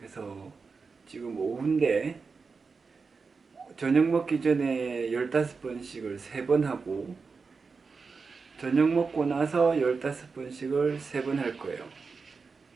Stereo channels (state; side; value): quieter; left; 4.8 dB